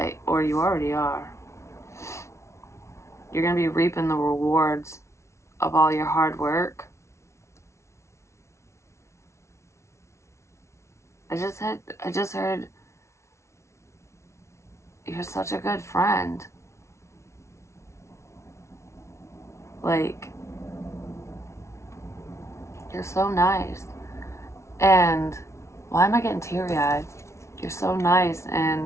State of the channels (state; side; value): late; right; 0.13 ms